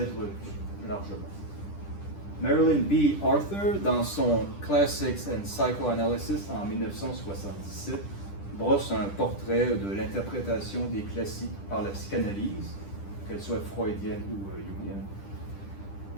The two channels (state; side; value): late; right; 10 ms